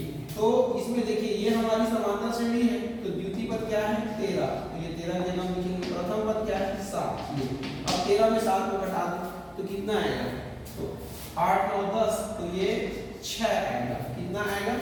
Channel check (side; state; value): both; identical; correlation 1.00